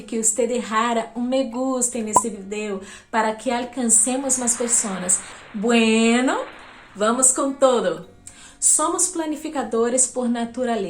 que você deixara me gusta nesse vídeo para que alcancemos mais pessoas. Bueno, vamos com todo! Somos planificadores por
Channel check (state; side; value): identical; both; correlation 1.00